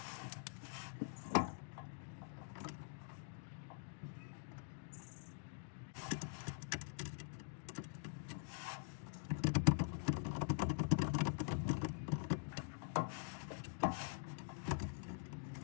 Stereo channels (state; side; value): silent; right; digital silence